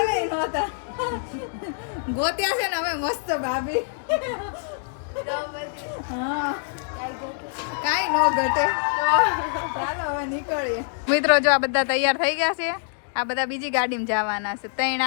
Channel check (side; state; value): right; silent; digital silence